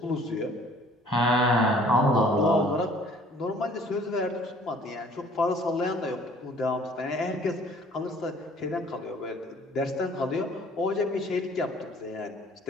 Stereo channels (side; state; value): both; normal; correlation 0.55